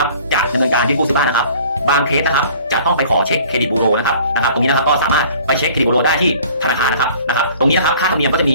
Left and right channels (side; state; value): both; inverted; correlation -0.50